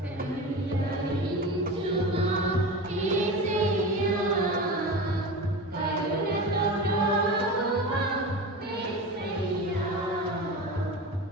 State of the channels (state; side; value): normal; both; correlation 0.28